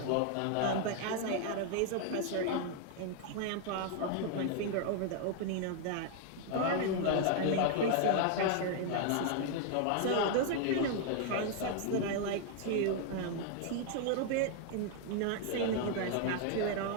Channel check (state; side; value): different; both; correlation 0.00